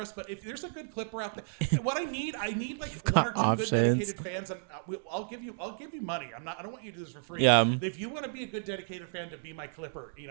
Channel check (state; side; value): silent; left; 56 dB below the other